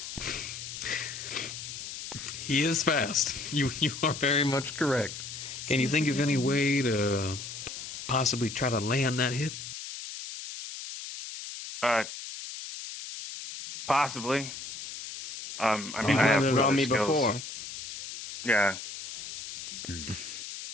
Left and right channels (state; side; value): noise; left; hiss, 9 dB below the sound